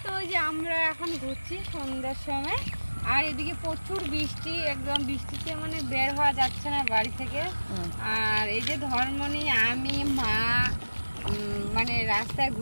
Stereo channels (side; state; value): both; inverted; correlation -1.00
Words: তো যে আমরা এখন ঘুরছি সন্ধ্যার সময়, আর এদিকে প্রচুর বৃষ্টি, একদম বৃষ্টিতে মানে বের হওয়া যাচ্ছে না বাড়ি থেকে। আর এই যে ধর্মনি, আমি, মা মানে রাস্তায়